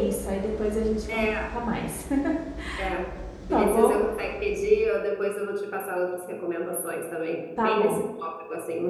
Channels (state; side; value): identical; both; correlation 1.00